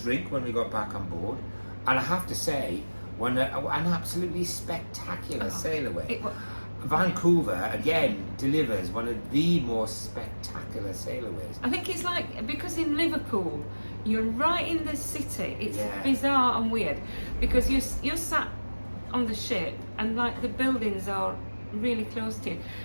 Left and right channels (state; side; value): inverted; both; correlation -1.00